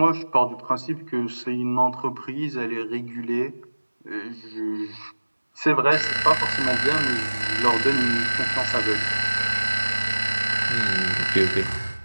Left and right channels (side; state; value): both; inverted; correlation -1.00